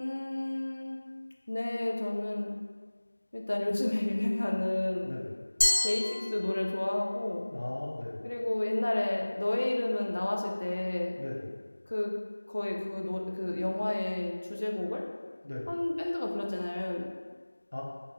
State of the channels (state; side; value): inverted; both; correlation -1.00